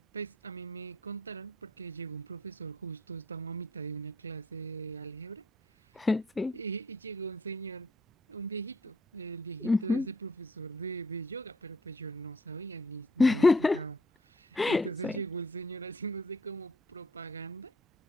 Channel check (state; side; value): normal; both; correlation 0.65